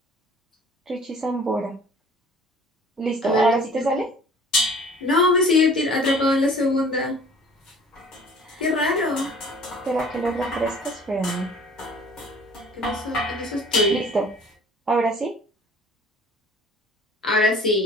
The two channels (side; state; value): both; normal; correlation 0.50